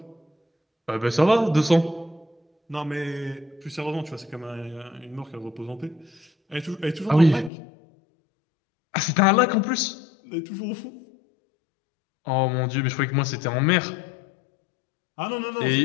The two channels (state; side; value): drops out; right; at 7.5 s